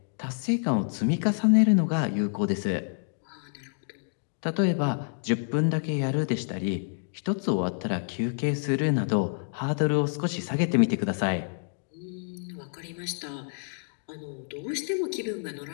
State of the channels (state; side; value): silent; right; digital silence